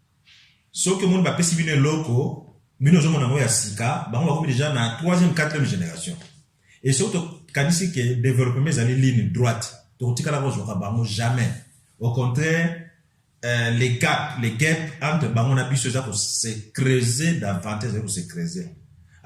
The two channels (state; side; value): identical; both; correlation 1.00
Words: Sauf que monde ba pesi bino loko, bino zo mona ya sika, ba on va déjà na 3e 4e génération. Et surtout kanisi que développer mes années ligne droite, to tikala ko zo ka bango jamais. Au contraire, les gaps entre Bangon et Bissau pour se creuser davantage, pour se creuser.